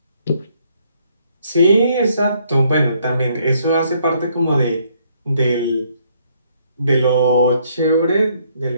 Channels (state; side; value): inverted; both; correlation -0.68